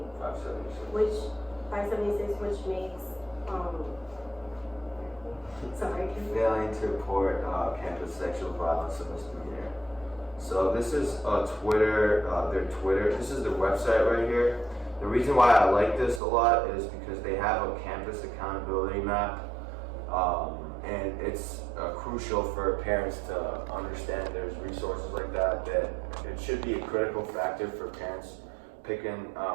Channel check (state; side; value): drops out; left; at 16.2 s